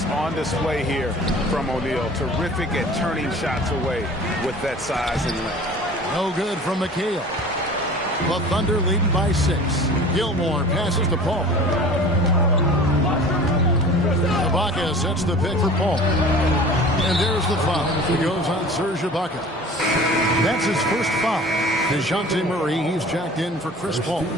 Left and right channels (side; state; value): both; normal; correlation 0.42